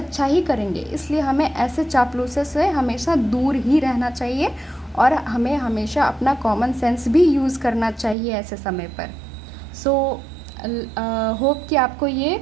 ही करेंगे। इसलिए हमें ऐसे चापलूसे से हमेशा दूर ही रहना चाहिए और हमें हमेशा अपना कॉमन सेंस भी यूज़ करना चाहिए ऐसे समय पर। सो होप कि आपको ये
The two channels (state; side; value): drops out; left; at 8.2 s